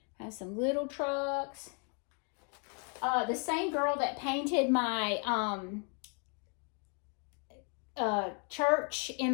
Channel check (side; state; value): right; quieter; 37.9 dB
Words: I have some little trucks. The same girl that painted my church in